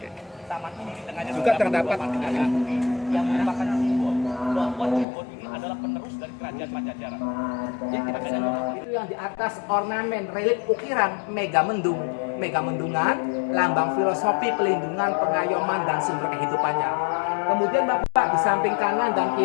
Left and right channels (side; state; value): right; drops out; at 5.1 s